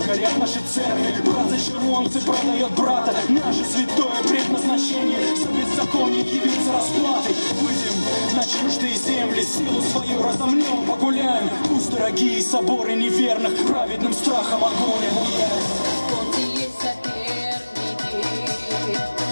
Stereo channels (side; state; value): both; inverted; correlation -1.00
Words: горят наши церкви, брат за червонцы продает брата, наше святое предназначение, за беззаконие явиться расплатой, выйдем на чуждые земли, силу свою разомнем, погуляем, пусть дорогие соборы неверных праведным страхом огонь обуяет. Вот и есть соперники,